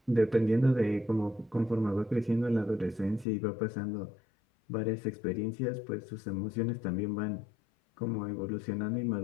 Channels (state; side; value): drops out; right; at 3.2 s